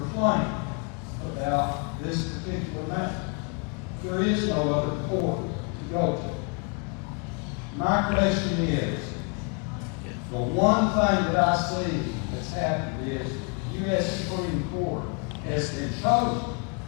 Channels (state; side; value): quieter; right; 36.2 dB